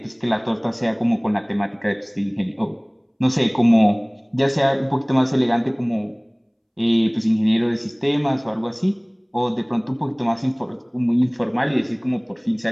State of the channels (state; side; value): identical; both; correlation 1.00